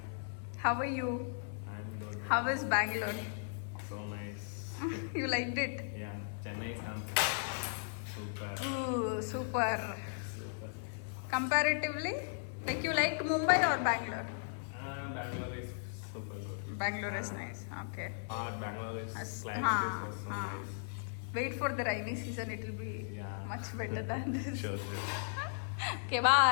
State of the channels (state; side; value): silent; right; digital silence